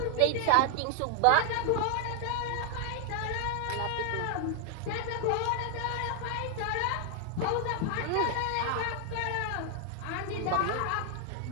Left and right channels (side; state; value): both; different; correlation 0.00